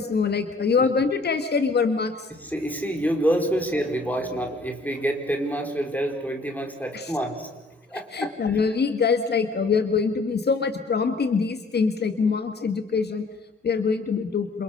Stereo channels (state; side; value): quieter; right; 3.3 dB